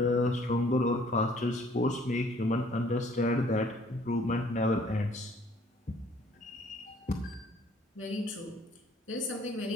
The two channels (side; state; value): both; normal; correlation 0.59